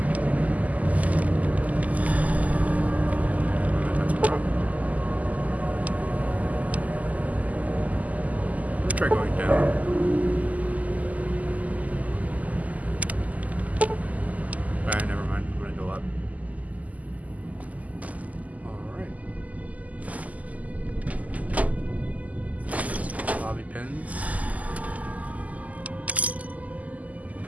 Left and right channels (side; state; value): left; late; 0.075 ms